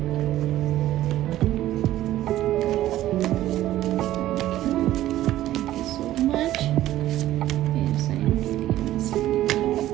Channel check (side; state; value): left; quieter; 14.0 dB